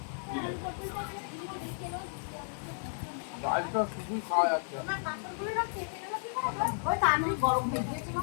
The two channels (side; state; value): right; silent; 56 dB below the other